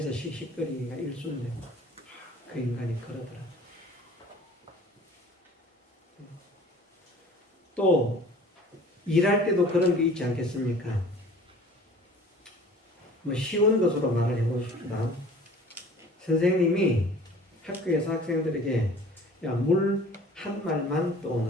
씩씩거리기가 일순데 그 인간이 그러더라. 또 일할 때도 그런 게 있지 않겠습니까? 쉬운 것으로 말을 해봅시다. 선생님이 학교에서 학생들에게 물 한 말만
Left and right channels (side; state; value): both; normal; correlation 0.47